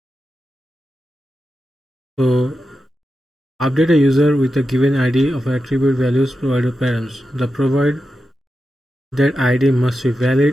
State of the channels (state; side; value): normal; both; correlation 0.90